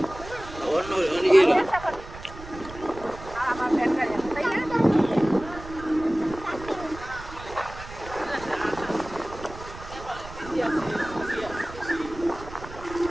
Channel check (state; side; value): noise; right; rumble, 14 dB below the sound